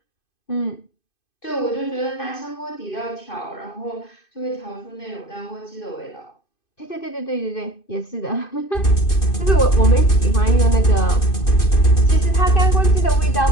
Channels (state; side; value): late; right; 2.5 ms